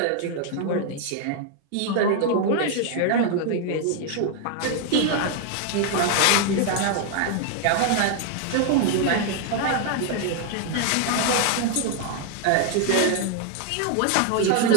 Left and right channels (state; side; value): different; both; correlation 0.00